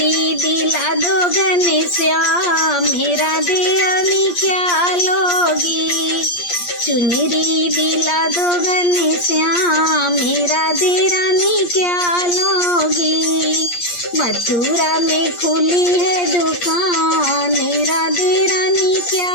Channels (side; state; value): right; late; 8.5 ms